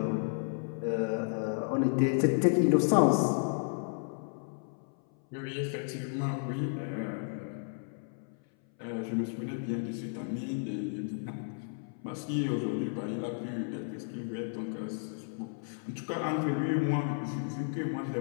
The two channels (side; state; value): right; silent; 56 dB below the other